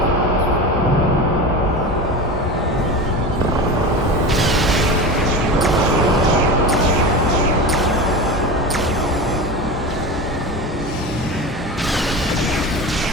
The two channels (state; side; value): normal; both; correlation 0.27